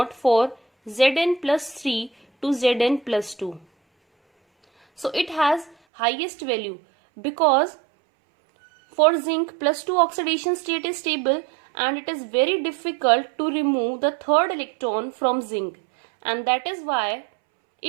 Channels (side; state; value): left; drops out; at 5.8 s